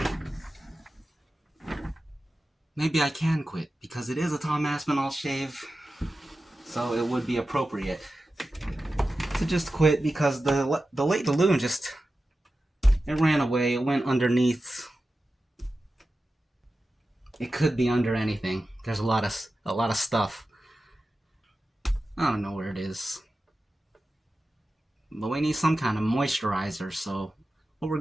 Maybe I can quit, because it is a Tom Aspinall shave, so it would be appropriate to just quit, because the late balloon just, it ran away. It went underneath. It could be under anything. There's a lot of stuff. I don't know where it is, but we need some kind of moisturizer. So what we're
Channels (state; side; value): normal; both; correlation 0.93